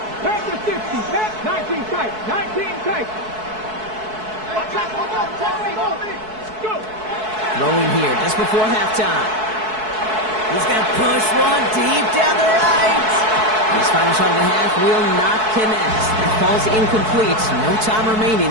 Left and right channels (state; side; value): late; left; 4.6 ms